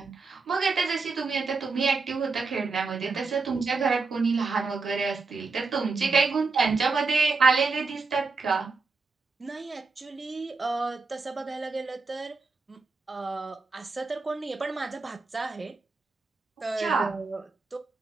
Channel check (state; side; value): quieter; left; 4.2 dB